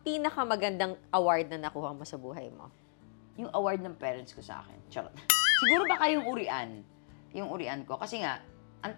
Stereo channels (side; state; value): right; silent; digital silence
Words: pinakamagandang award na nakuha mo sa buhay mo? Yung award ng parents ko sa akin. Charot. Siguro baka yung urian. Yung urian ko. Kasi nga, ang